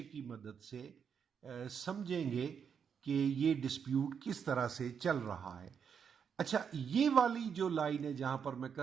کی مدد سے سمجھیں گے کہ یہ ڈسپیوٹ کس طرح سے چل رہا ہے۔ اچھا، یہ والی جو لائن ہے جہاں پر میں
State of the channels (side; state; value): left; quieter; 7.1 dB